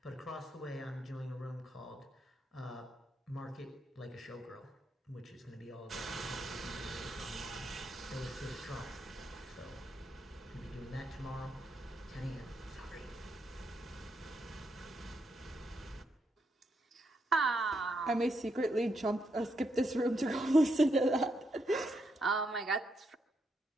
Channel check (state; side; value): normal; both; correlation 0.80